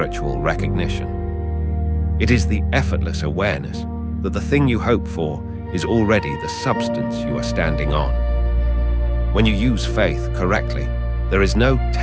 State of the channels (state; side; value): identical; both; correlation 1.00